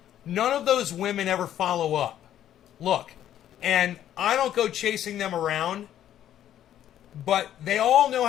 None of those women ever follow up. Look, and I don't go chasing them around, but they all know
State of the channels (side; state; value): right; quieter; 11.3 dB